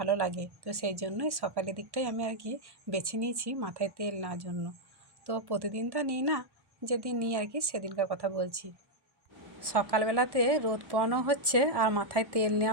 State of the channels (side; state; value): left; late; 1.1 ms